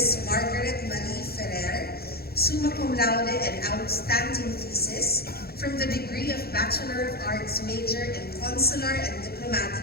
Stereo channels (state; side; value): late; right; 0.45 ms